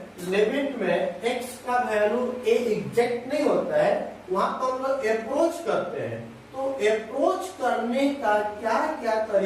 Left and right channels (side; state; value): both; identical; correlation 1.00